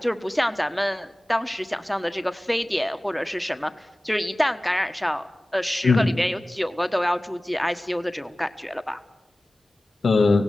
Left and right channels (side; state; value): both; normal; correlation 0.97